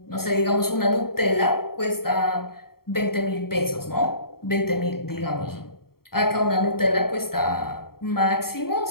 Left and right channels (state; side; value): late; right; 0.94 ms